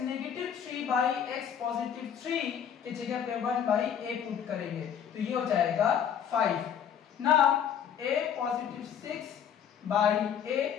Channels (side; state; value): right; quieter; 8.6 dB